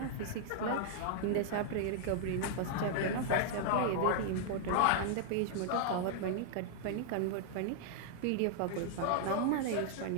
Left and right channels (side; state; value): both; different; correlation -0.01